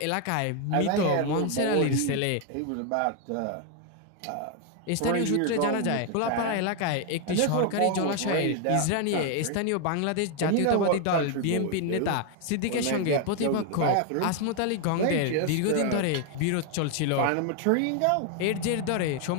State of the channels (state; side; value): different; both; correlation 0.01